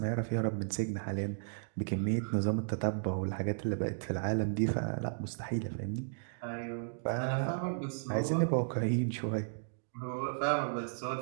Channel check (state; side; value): silent; left; digital silence